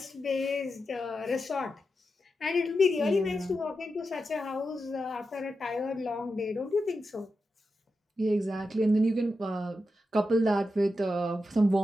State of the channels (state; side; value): normal; both; correlation 0.89